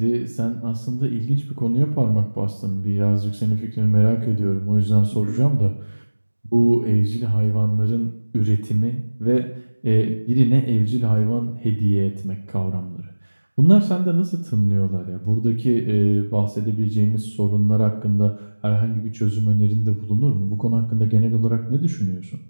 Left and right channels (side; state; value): both; inverted; correlation -1.00